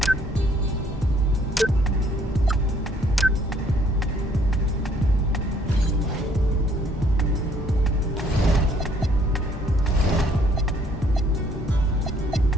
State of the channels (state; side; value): normal; both; correlation 0.63